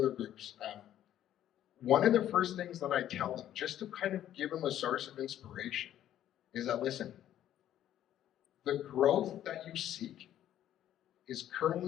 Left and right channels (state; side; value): quieter; right; 11.7 dB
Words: groups, one of the first things that I tell them, just to kind of give them a source of inspiration, is that, listen, the growth that you seek is